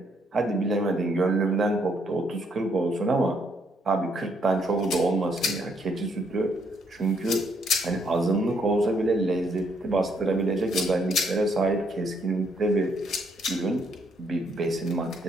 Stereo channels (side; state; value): both; normal; correlation 0.72